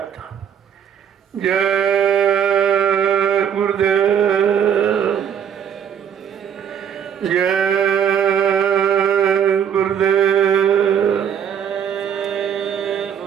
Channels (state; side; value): quieter; left; 8.5 dB